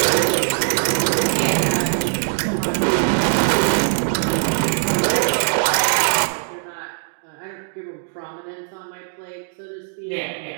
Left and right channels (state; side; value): silent; left; digital silence